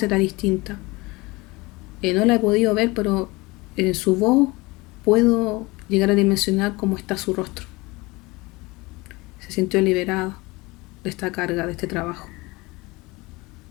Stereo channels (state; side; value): quieter; right; 23.2 dB